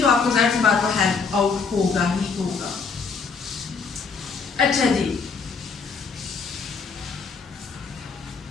तो आपको ज़ाहिर सी बात है हेल्प आउट होगा ही होगा। अच्छा जी,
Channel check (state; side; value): quieter; right; 5.2 dB